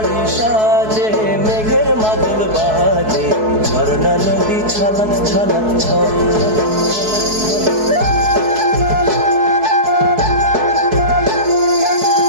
সাজে মেঘের মাদল বাজে, ঝর্ণা নদী ছলক ছলক ছল।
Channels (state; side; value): late; left; 4.7 ms